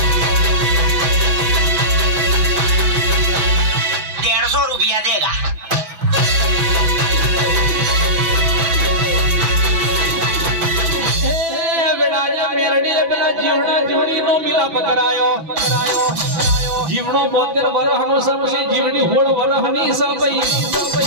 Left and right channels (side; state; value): left; late; 6.0 ms